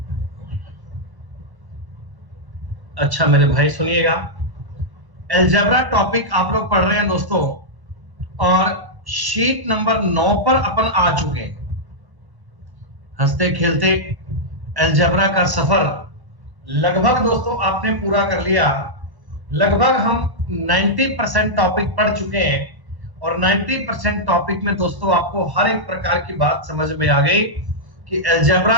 अच्छा मेरे भाई सुनिएगा, अलजेब्रा टॉपिक आप लोग पढ़ रहे हैं दोस्तों, और शीट नंबर 9 पर अपन आ चुके हैं। हंसते खेलते अलजेब्रा का सफर लगभग दोस्तों आपने पूरा कर लिया। लगभग हम 90% टॉपिक पढ़ चुके हैं, और 90% टॉपिक में दोस्तों आपको हर एक प्रकार की बात समझ में आ गई कि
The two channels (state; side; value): late; left; 1.0 ms